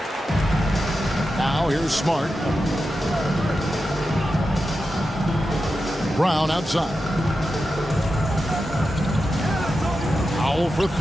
Now here's Smart. Brown outside. Powell for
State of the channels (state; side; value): normal; both; correlation 0.90